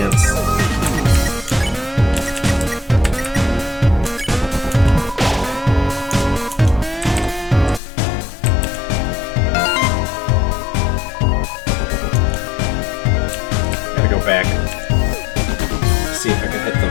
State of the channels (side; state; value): right; drops out; at 7.8 s